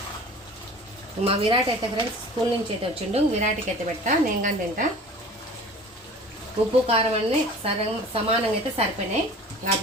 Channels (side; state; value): both; normal; correlation 0.42